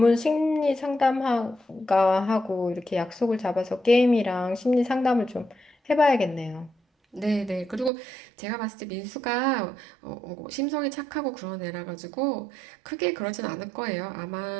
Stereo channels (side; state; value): left; drops out; at 7.9 s